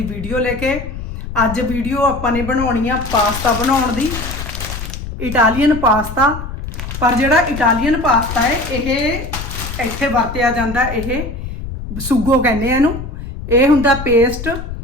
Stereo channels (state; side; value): noise; left; rumble, 8 dB below the sound